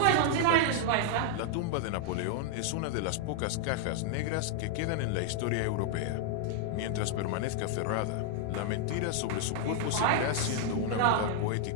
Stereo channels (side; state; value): both; different; correlation 0.00